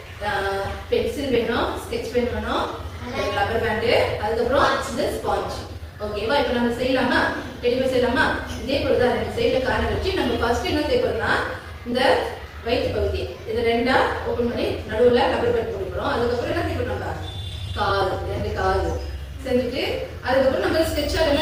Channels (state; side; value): identical; both; correlation 1.00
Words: பென்சில் வேணும், ஸ்கெட்ச் பென் வேணும், ரப்பர் பேண்டு, அதுக்கப்புறம் இந்த ஸ்பாஞ்ச். ஓகேவா? இப்போ நம்ம செய்யலாமா? டெடி பேர் செய்யலாமா? இதே போலதான் ரெண்டு சைடுல கார்னர் வச்சு நம்ம ஃபர்ஸ்ட் என்ன செய்ய போறோம்னா, இந்த வயிற்று பகுதி இதை ரெண்டா ஓபன் பண்ணி நடுவுல ரப்பர் பேண்ட் போட போறோம். அதுக்கப்புறம் என்ன செய்ய போறோம்? நம்ம காது, ரெண்டு காது செஞ்சுட்டு அதுக்கப்புறம் நம்ம ஸ்கெட்சால